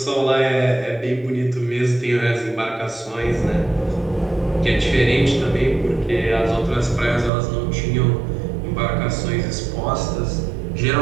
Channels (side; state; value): left; drops out; at 7.3 s